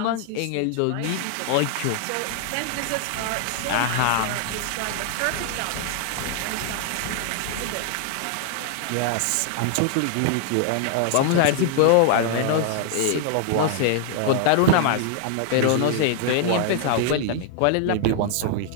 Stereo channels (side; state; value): both; different; correlation 0.00